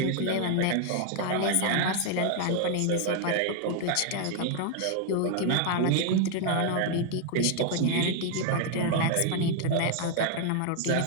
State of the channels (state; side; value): different; both; correlation 0.00